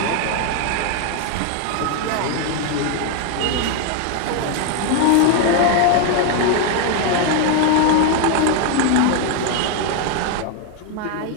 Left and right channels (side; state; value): both; different; correlation 0.01